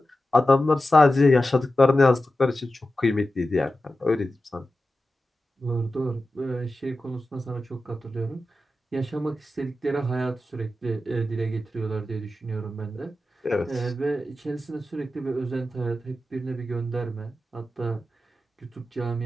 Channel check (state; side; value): normal; both; correlation 0.92